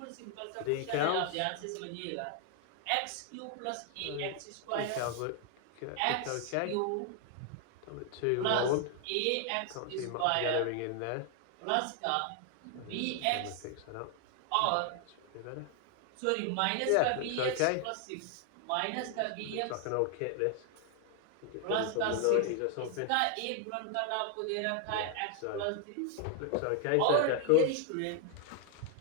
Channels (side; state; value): both; different; correlation 0.00